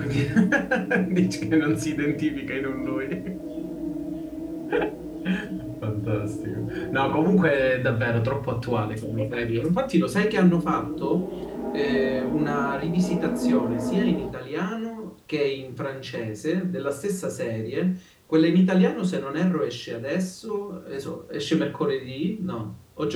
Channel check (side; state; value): both; identical; correlation 1.00